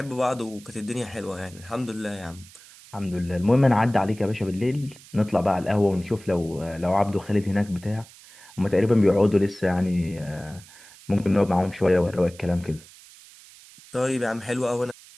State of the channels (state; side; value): noise; right; hiss, 22 dB below the sound